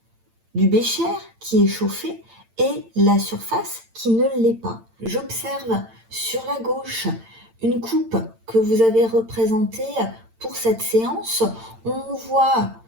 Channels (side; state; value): left; late; 8.9 ms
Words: du bécher qui est chauffé et la surface qui ne l'est pas. J'observe sur la gauche une coupe que vous avez représentée pour cette séance. On voit